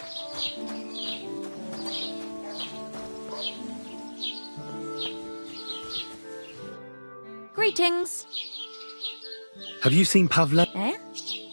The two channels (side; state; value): both; inverted; correlation -1.00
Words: Greetings. Have you seen Pavlena? Eh?